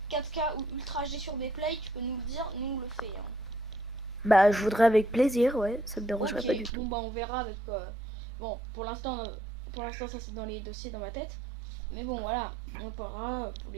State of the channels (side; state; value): left; drops out; at 6.7 s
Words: 4K ou Ultra HD sur Bplay, tu peux nous le dire, nous on le fait. Hein. Bah, je voudrais avec plaisir, ouais, ça me dérange pas du Ok, tout. bon bah on verra avec... Bon, pour l'instant, ça c'est dans les dossiers dans ma tête. Mais bon, voilà, on en parlera pour